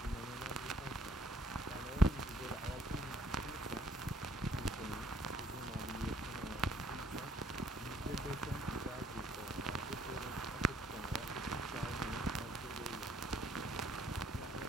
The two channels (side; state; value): both; normal; correlation 0.64